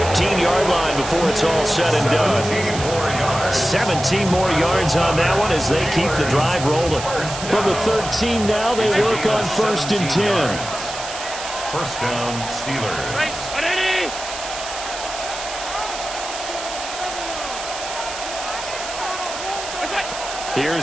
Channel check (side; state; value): right; noise; hiss, 9 dB below the sound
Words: line before it's all said and done. 17 more yards on that one as they keep the drive rolling. From the 13 now, they work on first and 10. First down, Steelers.